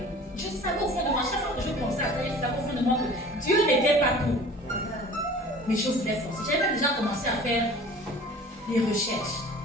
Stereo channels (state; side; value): normal; both; correlation 0.45